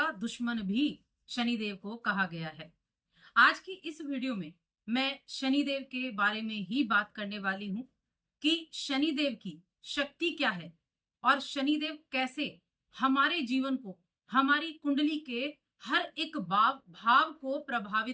दुश्मन भी शनिदेव को कहा गया है। आज की इस वीडियो में मैं शनिदेव के बारे में ही बात करने वाली हूं कि शनिदेव की शक्ति क्या है और शनिदेव कैसे हमारे जीवन को, हमारी कुंडली के हर एक भाव को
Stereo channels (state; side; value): identical; both; correlation 1.00